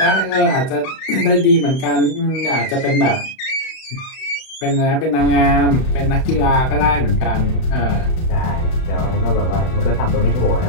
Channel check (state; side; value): late; right; 31 ms